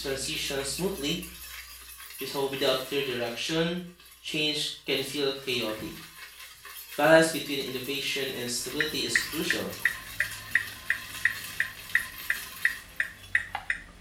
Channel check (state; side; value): identical; both; correlation 1.00